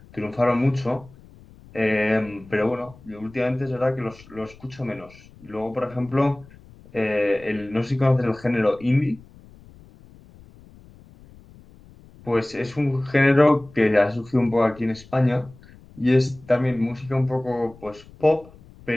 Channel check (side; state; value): left; noise; rumble, 23 dB below the sound